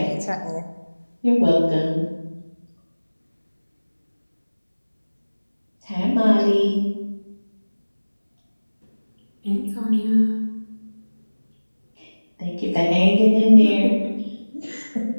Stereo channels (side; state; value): both; inverted; correlation -1.00